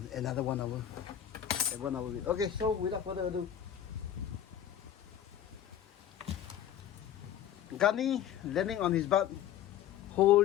another 1 hour. 1 hour. Okay, so without further ado, Gunny landing on his butt,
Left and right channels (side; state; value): right; quieter; 10.6 dB